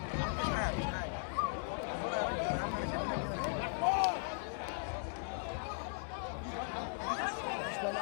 مش حاجه مش حاجه.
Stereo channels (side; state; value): right; silent; digital silence